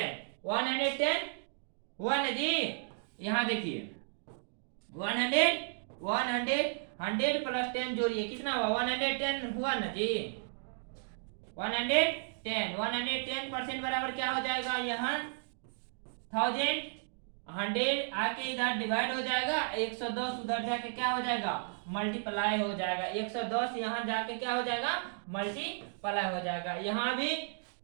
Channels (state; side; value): silent; left; digital silence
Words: 110 हुआ ना जी? यहाँ देखिए 100 प्लस 10 जोड़िए, कितना हुआ? 110 हुआ ना जी? 110% बराबर क्या हो जाएगा? यहाँ 1000 100 आके इधर डिवाइड हो जाएगा, 110 उधर जाके क्या हो जाएगा? मल्टीप्लाई हो जाएगा। 110 यहाँ जाके क्या हो जाएगा? मल्टीप्लाई हो जाएगा। यहाँ भी